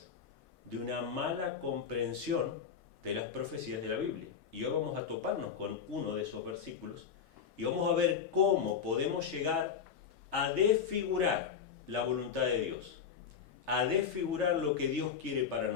De una mala comprensión de las profecías de la Biblia. Y hoy vamos a toparnos con uno de esos versículos y vamos a ver cómo podemos llegar a desfigurar la voluntad de Dios, a desfigurar lo que Dios quiere para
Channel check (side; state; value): right; quieter; 7.1 dB